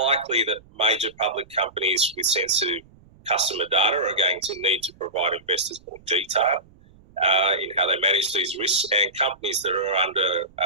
that major public companies with sensitive customer data are going to need to provide investors more detail in how they manage these risks, and companies that are under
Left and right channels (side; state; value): right; noise; rumble, 27 dB below the sound